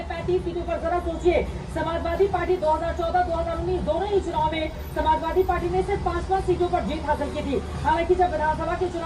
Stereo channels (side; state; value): both; identical; correlation 1.00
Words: 35 सीटों पर। जरा सोचिए, समाजवादी पार्टी 2014-2019 दोनों ही चुनाव में समाजवादी पार्टी ने सिर्फ 5 सीटों पर जीत हासिल की थी। हालांकि जब विधानसभा के